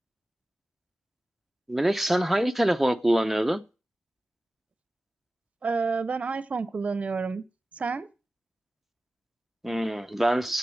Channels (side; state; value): both; normal; correlation 0.96